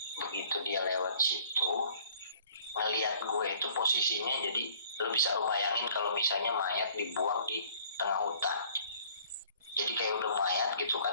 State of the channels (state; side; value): inverted; both; correlation -0.55